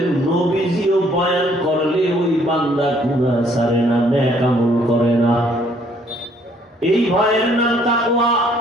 নবীজিও বয়ান করলে ওই বান্দা গুনাহ ছাড়ে না, নেক আমল করে না। এই ভয়ের নাম তাকওয়া।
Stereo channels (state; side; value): normal; both; correlation 0.64